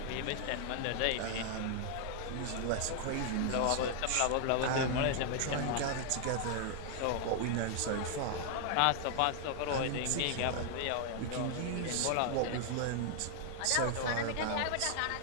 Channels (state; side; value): different; both; correlation 0.00